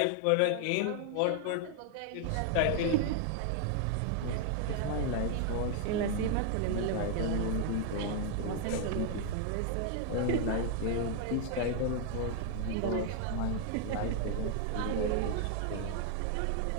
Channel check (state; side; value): different; both; correlation 0.00